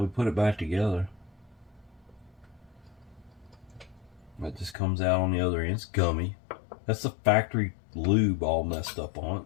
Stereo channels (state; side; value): drops out; right; at 4.8 s